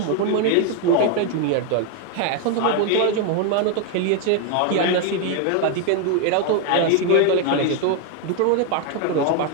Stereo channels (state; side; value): different; both; correlation 0.01